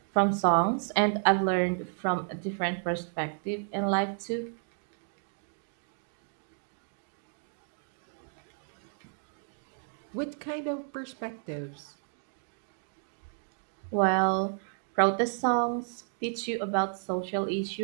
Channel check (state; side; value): silent; left; 56 dB below the other